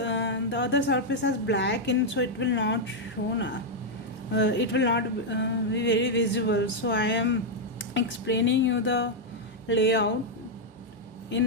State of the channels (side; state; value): both; normal; correlation -0.02